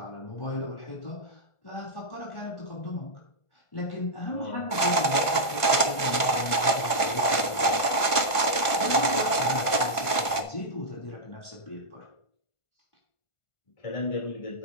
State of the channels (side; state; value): right; late; 1.5 ms